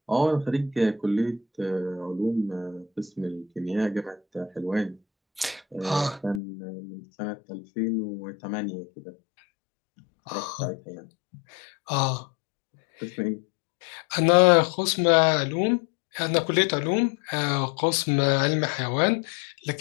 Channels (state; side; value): drops out; right; at 6.4 s